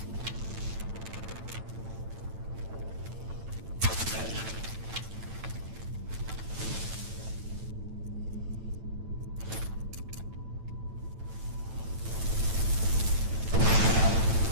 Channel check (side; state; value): left; late; 9.0 ms